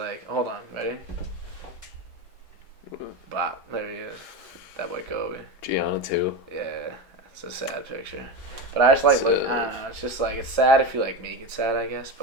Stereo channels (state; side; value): normal; both; correlation 0.20